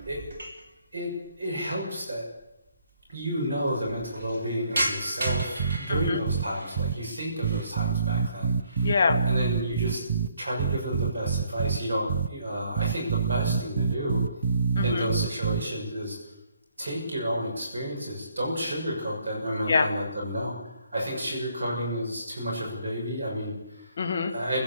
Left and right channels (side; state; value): both; inverted; correlation -0.68